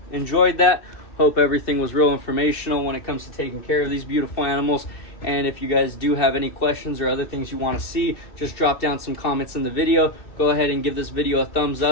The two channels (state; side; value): late; right; 2.7 ms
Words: enjoyed that. Hope everything was real informational when it comes to taking care of these beautiful animals. And if you guys do have any questions or other things you want to see, just drop down some comments in the video. Go ahead and give this video a thumbs